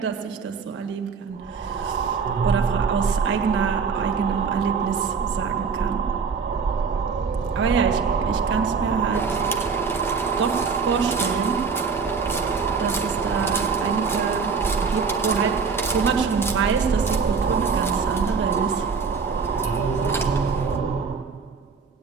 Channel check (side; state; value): left; quieter; 5.4 dB